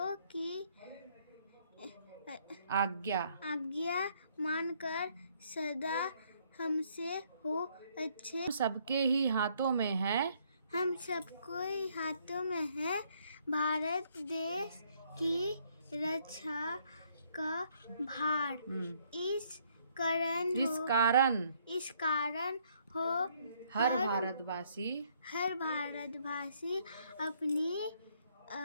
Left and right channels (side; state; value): both; inverted; correlation -0.68